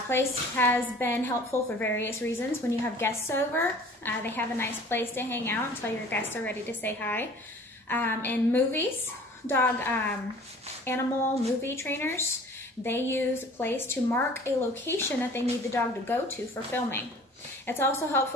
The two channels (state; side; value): normal; both; correlation 0.48